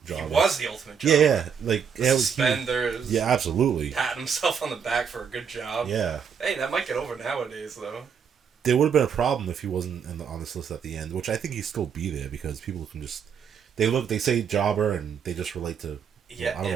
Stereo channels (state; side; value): quieter; left; 7.1 dB